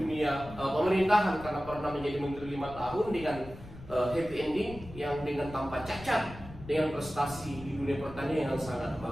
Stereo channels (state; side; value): noise; left; rumble, 16 dB below the sound